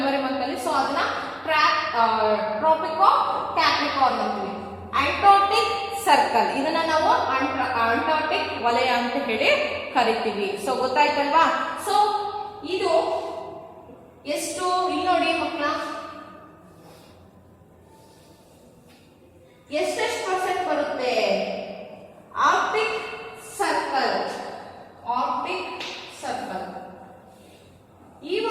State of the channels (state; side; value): identical; both; correlation 1.00